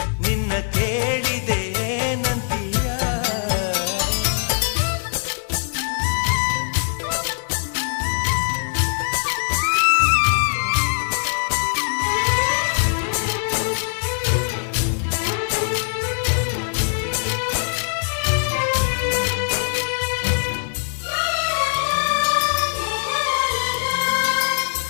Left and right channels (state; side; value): silent; right; 59 dB below the other